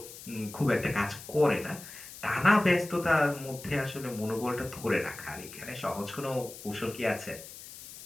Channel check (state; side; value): noise; left; hiss, 15 dB below the sound